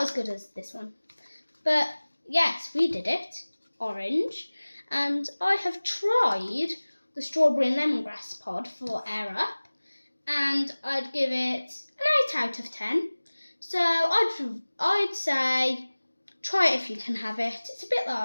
as good as this one. But yes, we did it. Orange. And I have tried the strawberry and lemongrass pod for Air Up, and I'd give it an 8 out of 10. So I'd say try it if you can have it. It's a bit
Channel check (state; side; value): inverted; both; correlation -1.00